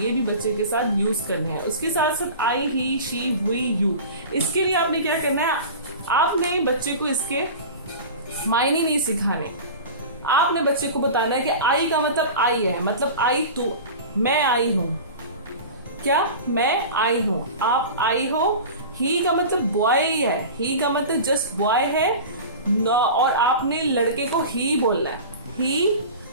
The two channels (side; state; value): both; inverted; correlation -0.34